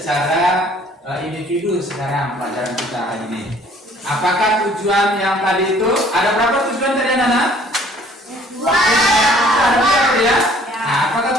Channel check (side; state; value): both; normal; correlation 0.57